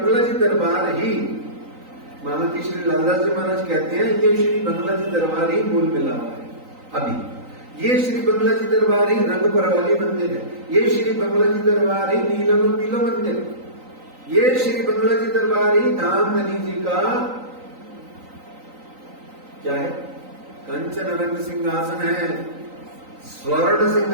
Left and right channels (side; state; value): left; late; 3.9 ms